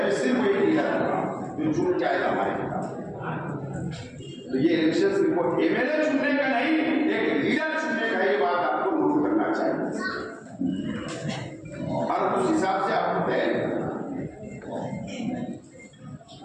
में सिर्फ एक लीडर जो चुन के आएगा हमारे खिलाफ। तो ये इलेक्शन सिर्फ एमएलए चुनने का नहीं, एक लीडर चुनने का, ये बात आपको नोट करना चाहिए और उस हिसाब से आपको तय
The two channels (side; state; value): both; identical; correlation 1.00